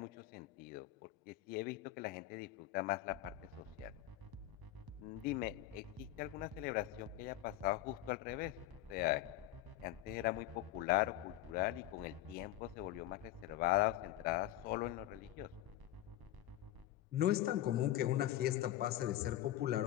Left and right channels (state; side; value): quieter; right; 14.0 dB